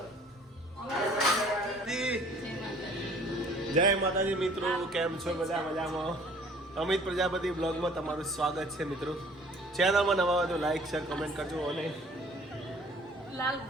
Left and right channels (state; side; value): normal; both; correlation 0.53